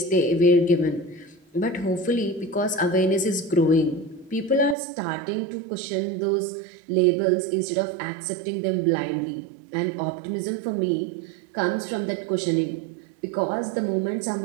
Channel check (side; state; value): left; drops out; at 4.8 s